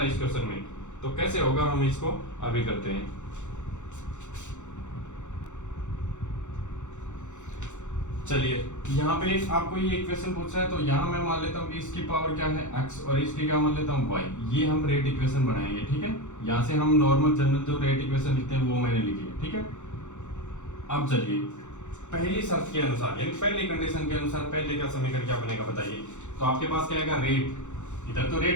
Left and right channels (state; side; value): late; right; 0.84 ms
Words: इस क्वेश्चन में। तो कैसे होगा, हम इसको अभी करते हैं। चलिए, यहाँ पे आपको ये इक्वेशन पूछ रहा है, तो यहाँ मैं मान लेता हूँ कि इसकी पावर क्या है x और इसकी क्या मान लेता हूँ y। ये हम रेट इक्वेशन बनाएंगे, ठीक है। यहाँ से हम नॉर्मल जनरल जो रेट इक्वेशन लिखते हैं वो मैंने लिखी है, ठीक है। अब चलिए, पहली शर्त के अनुसार, यानी पहली कंडीशन के अनुसार पहले का समीकरण क्या बनेगा बताइए। तो आपके पास क्या आएगा, रेट। इधर तो